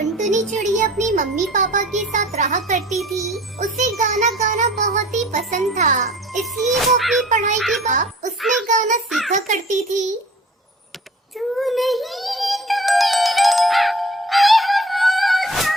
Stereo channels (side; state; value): both; normal; correlation 0.47